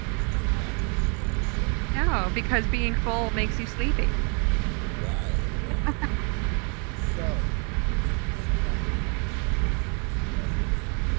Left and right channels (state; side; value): quieter; left; 37.0 dB